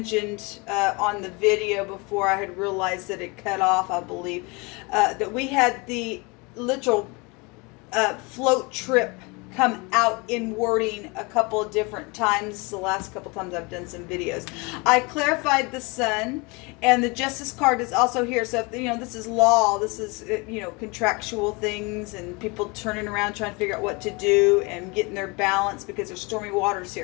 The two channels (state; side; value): quieter; right; 27.9 dB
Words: on the video before I had realized that it cut off, I believe, that we had the literal float trip come out in wording a couple of different times. The last couple times I've done some videos. I clarified the Sun, and the Justice card is also here. So if, you know, this is law, this is, you know, contractual things and people turning around trying to figure out what to do and getting their balance because there's stormy waters